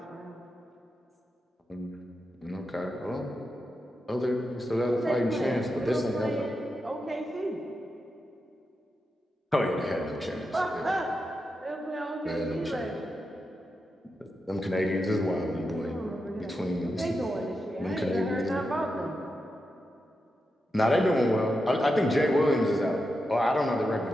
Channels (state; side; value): normal; both; correlation 0.88